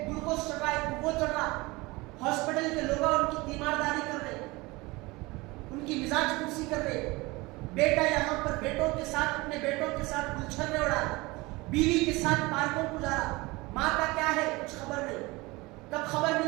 گلوکوز چڑھ رہا ہے, وہ چڑھ رہا, ہاسپٹل کے لوگ ان کی تیمارداری کر رہے, ان کی مزاج پرسی کر رہے. بیٹا یہاں پر بیٹوں کے ساتھ, اپنے بیٹوں کے ساتھ گلچھن میں اڑا, بیوی کے ساتھ پارکوں کو جا رہا. ماں کا کیا ہے کچھ خبر نہیں. کب خبر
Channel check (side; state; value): left; quieter; 22.8 dB